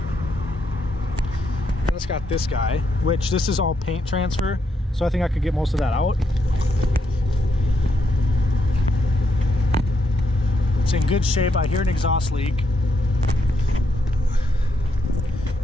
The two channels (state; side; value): normal; both; correlation 0.79